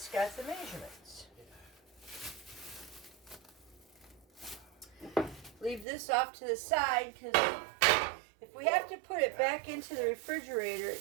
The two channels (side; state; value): left; drops out; at 5.9 s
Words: got the measurements. Leave this off to the side because if we have to put it back into the refrigerator